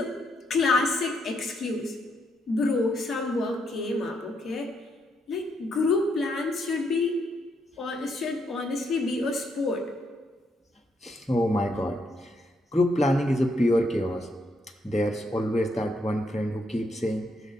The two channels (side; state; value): both; normal; correlation 0.76